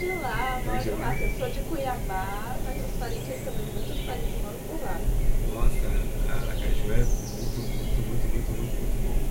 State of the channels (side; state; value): both; identical; correlation 1.00